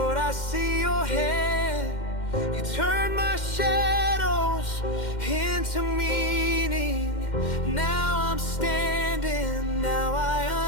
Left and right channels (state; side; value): late; right; 2.1 ms